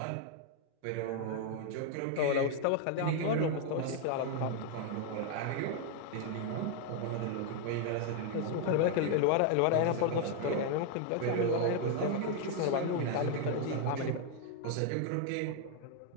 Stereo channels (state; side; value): different; both; correlation 0.00